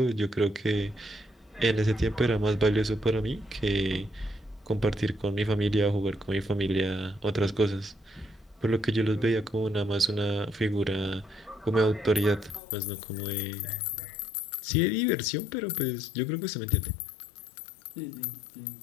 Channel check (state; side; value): drops out; right; at 12.6 s